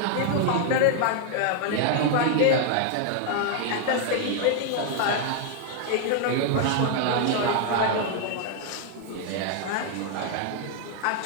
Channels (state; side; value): different; both; correlation 0.00